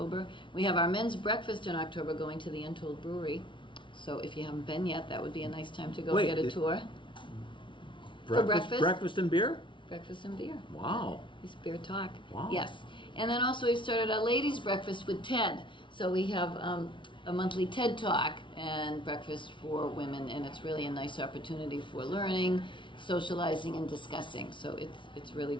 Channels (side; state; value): right; late; 0.24 ms